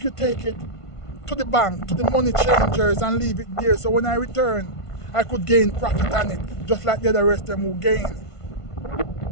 you take it to the bank, to the money changers and leave it there, so when I return, I could gain profit on it, just like the other rest of them who gain.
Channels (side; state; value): right; late; 1.5 ms